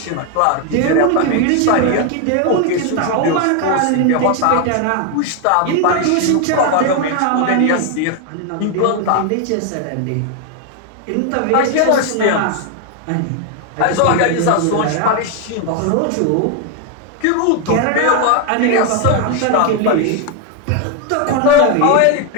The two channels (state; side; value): different; both; correlation 0.01